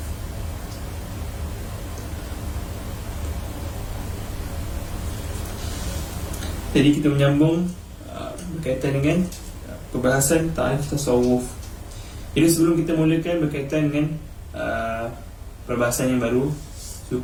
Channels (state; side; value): identical; both; correlation 1.00